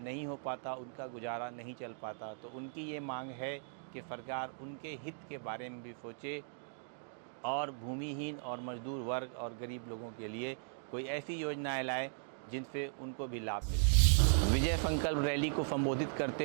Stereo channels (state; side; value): silent; left; digital silence